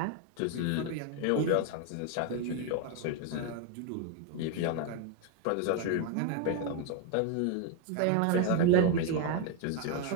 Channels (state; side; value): different; both; correlation 0.01